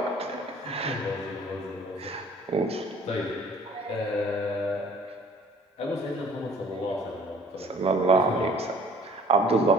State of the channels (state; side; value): normal; both; correlation 0.53